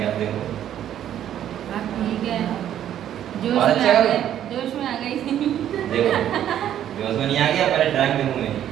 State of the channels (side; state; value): left; quieter; 10.8 dB